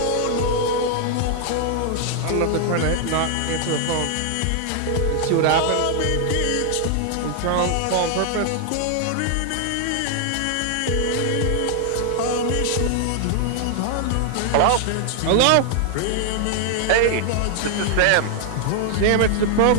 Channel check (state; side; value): different; both; correlation 0.00